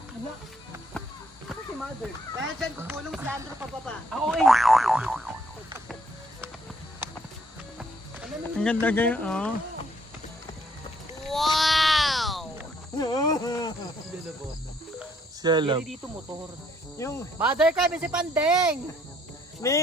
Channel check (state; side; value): normal; both; correlation 0.66